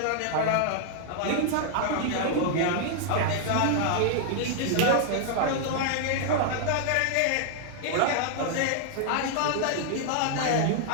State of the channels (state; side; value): different; both; correlation 0.00